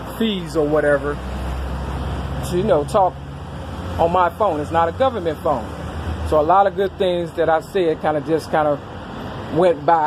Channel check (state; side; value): identical; both; correlation 1.00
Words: fees or whatever to, talk on my phone. It's not a government phone. So a lot of good things that I said kind of went